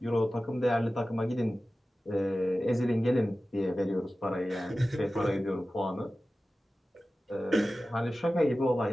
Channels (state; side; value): normal; both; correlation 0.95